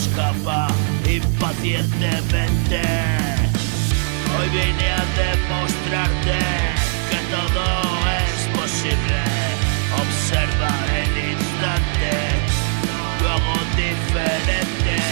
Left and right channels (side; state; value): left; silent; digital silence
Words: impacientemente. Hoy vine a demostrarte que todo es posible. Observa el instante, luego diferente.